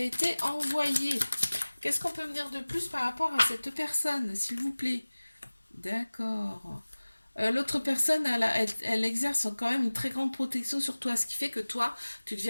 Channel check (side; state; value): both; inverted; correlation -1.00